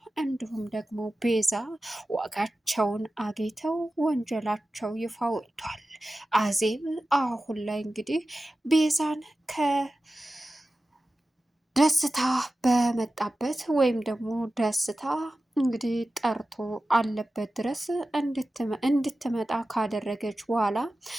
እንዲሁም ደግሞ ቤዛ ዋጋቸውን አግኝተው ወንጀላቸው ይፋ ወጥቷል። አዜብ አሁን ላይ እንግዲህ ቤዛን ከደስታ በመጣበት ወይም ደግሞ ደስታ እንግዲህ ጠርቶ አለበት ድረስ እንድትመጣ ካደረገች በኋላ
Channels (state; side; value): normal; both; correlation 0.94